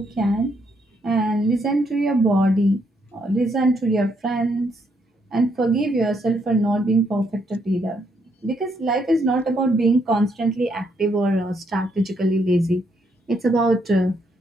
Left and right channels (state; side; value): normal; both; correlation 0.74